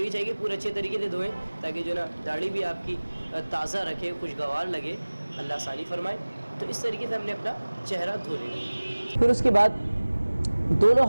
चाहिए पूरे अच्छे तरीके से धोएं ताकि जो ना दाढ़ी भी आपकी ताज़ा रखे, खुशगवार लगे, अल्लाह आसानी फरमाए। तो इस तरीके से हमने अपना चेहरा धो लेना। फिर उसके बाद दोनों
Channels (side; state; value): both; inverted; correlation -1.00